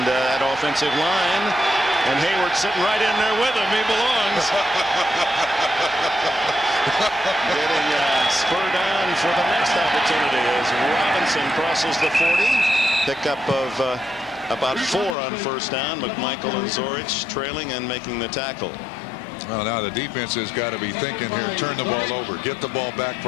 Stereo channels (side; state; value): right; drops out; at 15.2 s